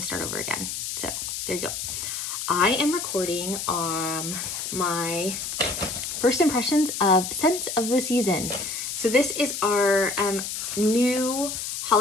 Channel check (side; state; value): left; noise; hiss, 5 dB below the sound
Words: over again. So there you go. I am recording my first impressions of Scents of the Season. So this is our new